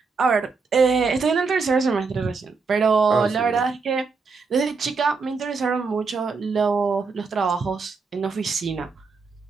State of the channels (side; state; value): left; quieter; 4.7 dB